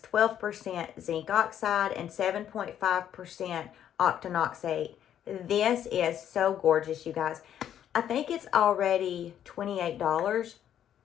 12% zinc oxide and 7.5% octinoxate. This is so gorgeous, you guys. I think it's already $28.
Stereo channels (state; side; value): quieter; right; 10.1 dB